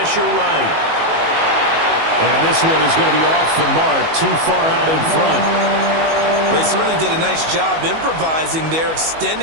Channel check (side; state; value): left; late; 19 ms